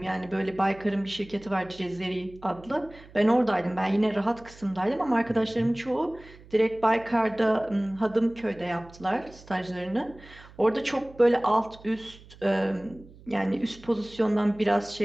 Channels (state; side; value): noise; right; hum, 22 dB below the sound